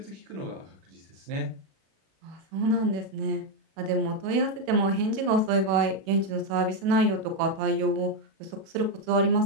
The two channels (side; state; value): left; late; 37 ms